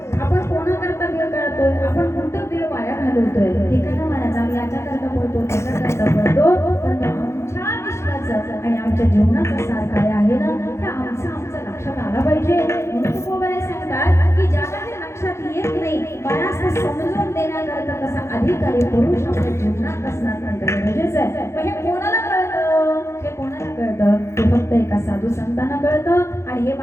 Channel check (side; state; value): right; late; 0.13 ms